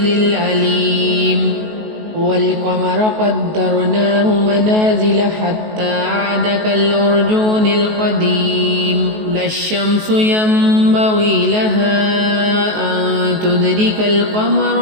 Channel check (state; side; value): late; left; 19 ms